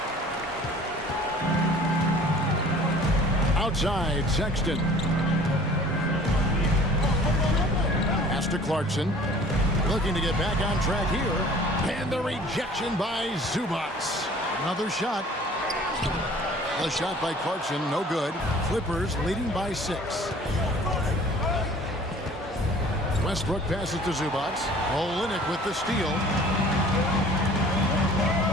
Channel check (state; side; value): normal; both; correlation 0.49